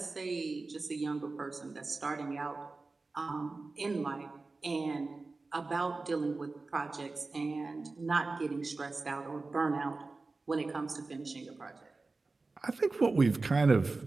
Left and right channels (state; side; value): quieter; left; 3.6 dB